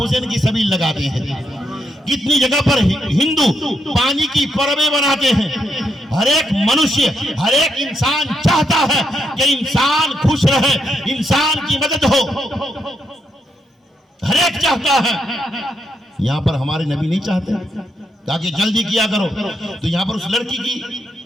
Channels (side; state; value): both; normal; correlation 0.79